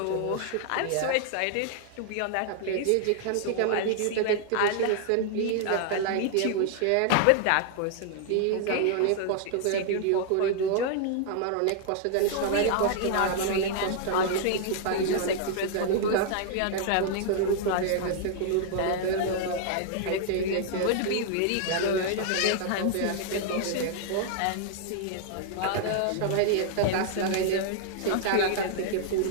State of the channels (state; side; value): different; both; correlation 0.00